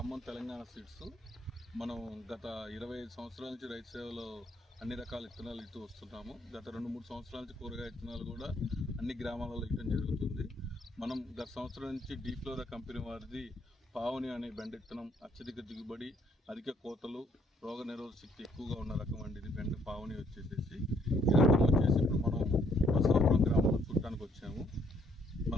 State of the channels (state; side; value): normal; both; correlation 0.67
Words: తెలంగాణ సీడ్స్. మనం గత 25 సంవత్సరాల నుంచి రైతు సేవలో అన్ని రకాల విత్తనాలు ఇస్తూ వస్తున్నాము. గత 2-3 సంవత్సరాల నుంచి కూరగాయ విత్తనాలు కూడా అన్ని గ్రామాలలో ఇవ్వడం జరుగుతుంది. మనం గత సంవత్సరం నుంచి డీఫ్లోరా కంపెనీ వారిది పావని అనే బెండ విత్తనం అత్యధిక దిగుబడి, అధిక కోతలు, రోగ నిరోధక శక్తి ఎక్కువగా ఉన్న రకం అండి. ఇది బెండ పావని వచ్చేసి ఈ రకం వచ్చేసి ఇప్పుడు మనం బసవాపురం గ్రామంలో చూడటానికి వచ్చాము.